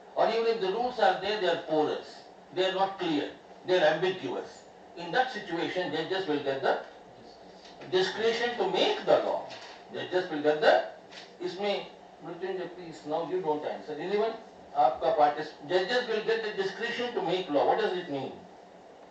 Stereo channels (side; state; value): both; identical; correlation 1.00